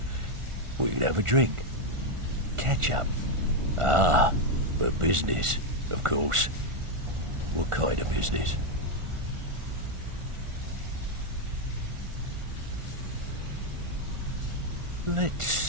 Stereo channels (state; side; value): late; left; 1.4 ms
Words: We can have a drink. Catch up. Ah, but business, of course. What kind of business? Let's